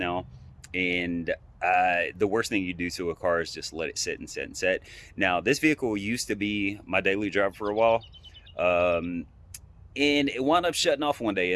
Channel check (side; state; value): both; identical; correlation 1.00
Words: and the worst thing you do to a car is just let it sit and sit and sit. Now this vehicle used to be my daily driver for a while. And it wound up shutting off one day,